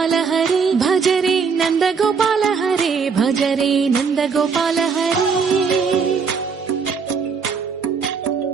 హరే భజరే నందగోపాల హరే భజరే నందగోపాల హరే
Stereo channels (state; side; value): quieter; left; 5.6 dB